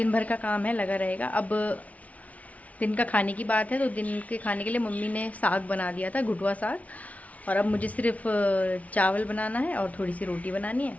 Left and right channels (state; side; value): late; right; 0.069 ms